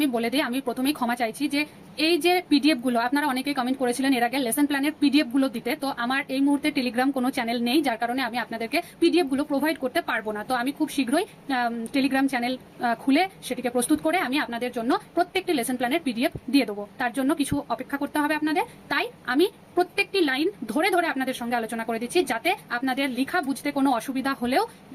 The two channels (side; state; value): both; identical; correlation 1.00